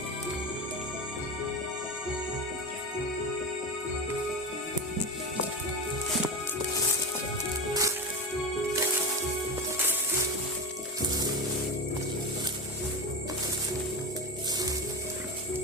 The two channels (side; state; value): both; normal; correlation 0.20